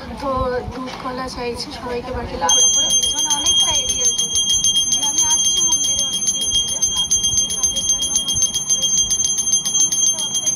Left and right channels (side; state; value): both; identical; correlation 1.00